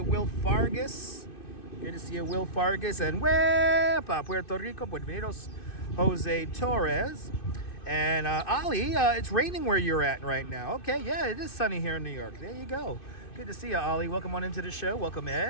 Will Fargus. Good to see you, Will Fargus. And Wepa, Puerto Rico. Buenos Jose Torres. And Ali, it's raining where you're at right now. Okay, yeah, it is sunny here in New York. There you go. Good to see you, Ali. Welcome on into the show. Welcome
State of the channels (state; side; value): late; right; 2.6 ms